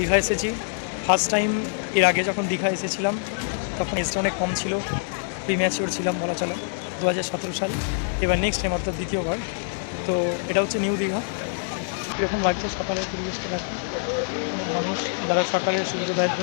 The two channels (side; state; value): right; silent; 62 dB below the other